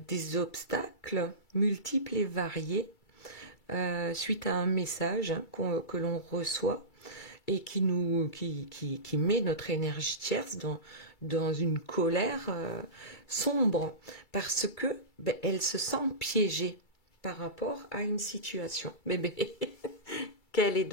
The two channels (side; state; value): right; late; 2.3 ms